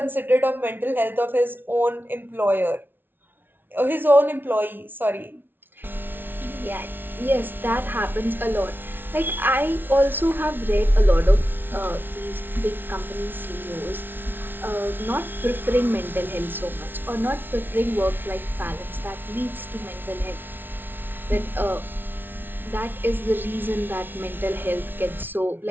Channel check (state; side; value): late; left; 0.099 ms